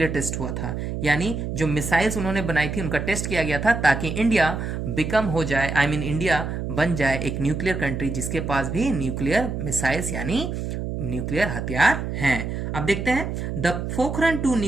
टेस्ट हुआ था। यानी जो मिसाइल्स उन्होंने बनाई थी उनका टेस्ट किया गया था ताकि इंडिया बिकम हो जाए, इंडिया बन जाए एक न्यूक्लियर कंट्री जिसके पास भी न्यूक्लियर मिसाइल्स यानी न्यूक्लियर हथियार हैं। अब देखते हैं द पोखरण 2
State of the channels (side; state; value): right; noise; hum, 4 dB below the sound